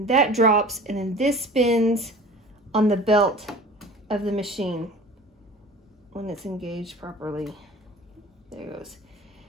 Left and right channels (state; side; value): normal; both; correlation 0.41